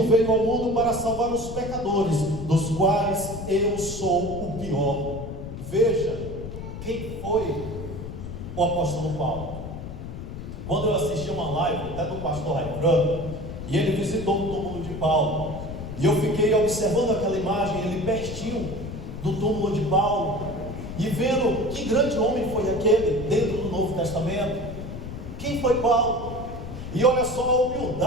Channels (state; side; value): noise; left; rumble, 9 dB below the sound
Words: veio ao mundo para salvar os pecadores, dos quais eu sou o pior. Veja quem foi o apóstolo Paulo. Quando eu assisti uma live até do pastor Raimundo, e ele visitou o túmulo de Paulo, e eu fiquei observando aquela imagem, ele pertinho do túmulo de Paulo, e vendo que grande homem foi aquele dentro do Novo Testamento. Quem foi Paulo? E olha só a